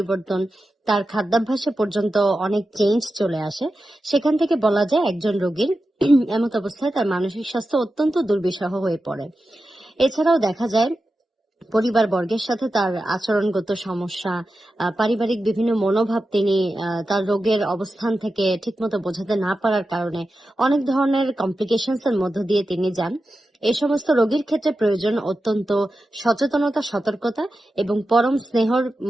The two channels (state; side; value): normal; both; correlation 0.91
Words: তার খাদ্যাভ্যাসে পর্যন্ত অনেক চেঞ্জ চলে আসে। সেখান থেকে বলা যায় একজন রোগীর এমত অবস্থায় তার মানসিক স্বাস্থ্য অত্যন্ত দুর্বিষহ হয়ে পড়ে। এছাড়াও দেখা যায় পরিবার বর্গের সাথে তার আচরণগত সমস্যা, পারিবারিক বিভিন্ন মনোভাব তিনি তার রোগের অবস্থান থেকে ঠিকমতো বোঝাতে না পারার কারণে অনেক ধরনের কমপ্লিকেশনস এর মধ্য দিয়ে তিনি যান। এই সমস্ত রোগীর ক্ষেত্রে প্রয়োজন অত্যন্ত সচেতনতা, সতর্কতা এবং পরম স্নেহর